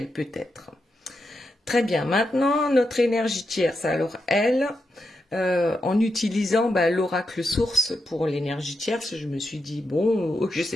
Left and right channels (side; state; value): both; normal; correlation 0.85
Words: peut-être. Très bien, maintenant, notre énergie tierce. Alors, elle, en utilisant l'oracle source pour l'énergie tierce, je me suis dit, bon, je ne